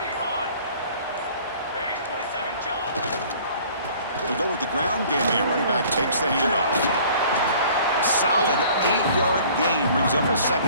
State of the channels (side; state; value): both; inverted; correlation -0.51